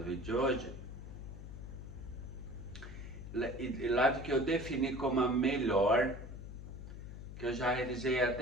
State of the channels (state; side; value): noise; left; hum, 10 dB below the sound